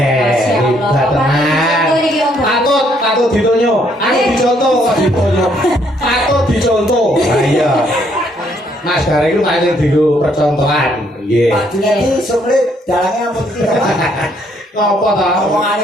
tenan. Patut ditonyo. Aku dicontoh kok ditonyo. Patut dicontoh. Lah iya. Mas Gareng itu paling digo percontohan. Nggih. Pak Junedi sulit dalangnya ampun iki ya, Pak. Ngopo to?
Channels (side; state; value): both; normal; correlation 0.69